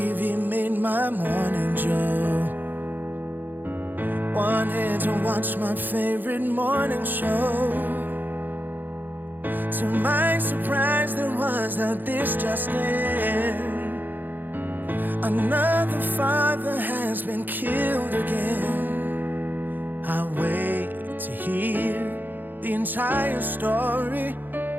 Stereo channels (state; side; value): late; left; 0.089 ms